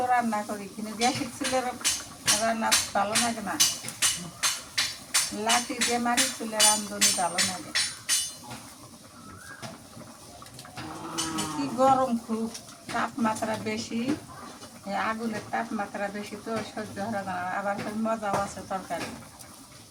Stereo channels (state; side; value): identical; both; correlation 1.00